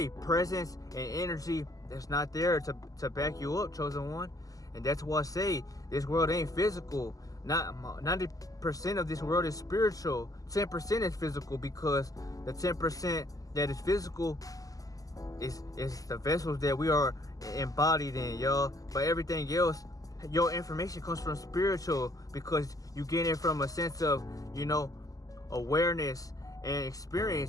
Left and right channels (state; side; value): late; right; 0.17 ms